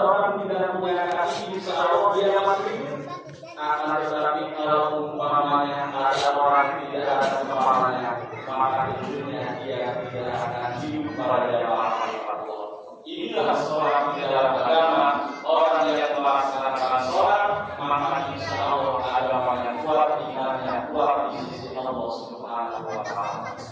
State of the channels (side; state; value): both; identical; correlation 1.00